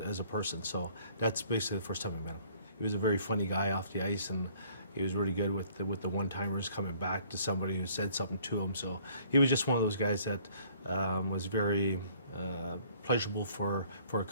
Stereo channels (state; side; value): inverted; both; correlation -0.58